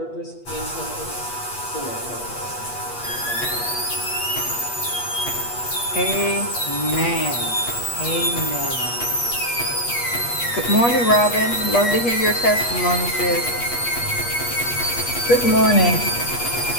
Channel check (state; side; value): late; right; 8.3 ms